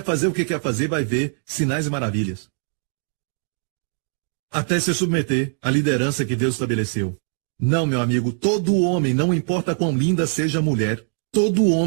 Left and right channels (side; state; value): left; silent; 60 dB below the other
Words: fazer o que quer fazer, vai ver sinais e maravilhas. Até se submeter à liderança que Deus estabeleceu. Não, meu amigo, todo homem, não importa quão linda seja a mulher, todo